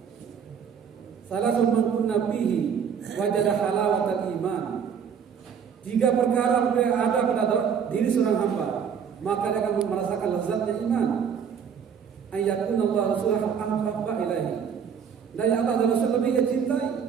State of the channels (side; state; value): left; quieter; 7.3 dB